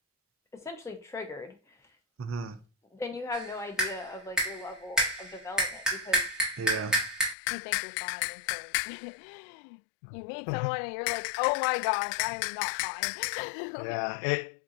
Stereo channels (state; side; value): drops out; right; at 7.4 s